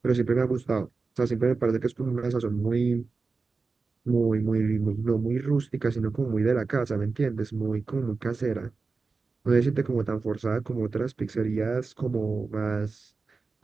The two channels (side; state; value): left; quieter; 4.2 dB